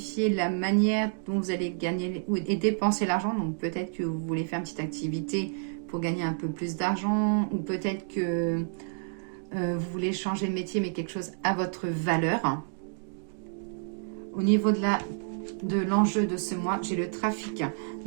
la manière dont vous allez gagner et dépenser l'argent. Donc peut-être que vous voulez faire une petite activité pour gagner un peu plus d'argent. Ou peut-être que vous voulez changer de métier, mais quelque chose à votre valeur. Au niveau de l'enjeu de ce mois, j'ai le trafic.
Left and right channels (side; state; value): left; silent; digital silence